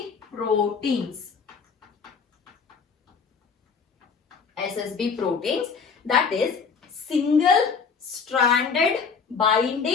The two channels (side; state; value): right; quieter; 5.6 dB